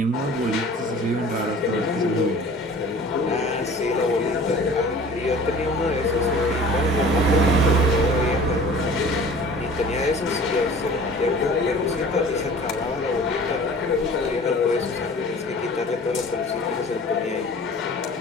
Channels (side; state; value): both; normal; correlation 0.45